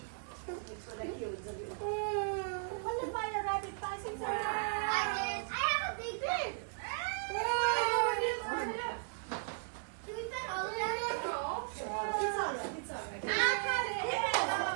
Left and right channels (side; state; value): left; silent; 54 dB below the other